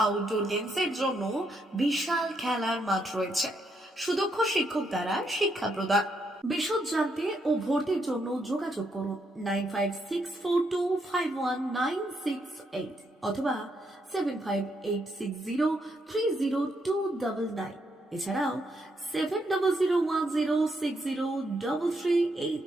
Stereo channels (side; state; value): both; normal; correlation 0.77